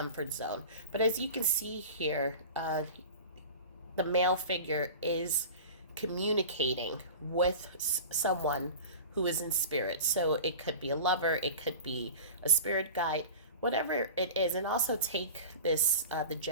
zone. But as you can see here, the male figure is communicating with someone who is in spirit. So it could be a lover, it could be a spirit guide, whatever it is. And also take this, the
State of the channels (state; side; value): inverted; both; correlation -0.36